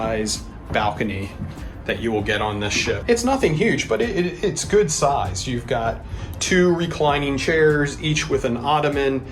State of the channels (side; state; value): both; identical; correlation 1.00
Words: balcony that you will get on this ship. It's nothing huge, but it's good size. You've got 2 reclining chairs, each with an ottoman